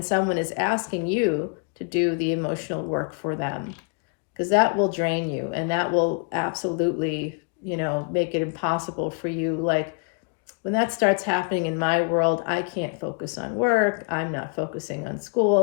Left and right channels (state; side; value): quieter; right; 35.7 dB